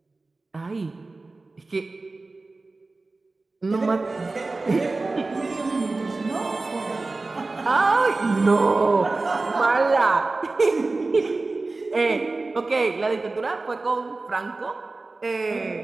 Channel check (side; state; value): left; quieter; 3.4 dB